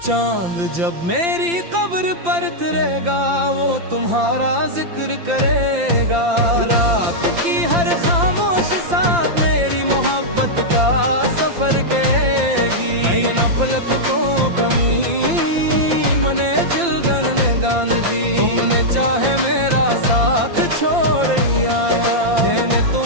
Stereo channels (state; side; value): late; left; 5.8 ms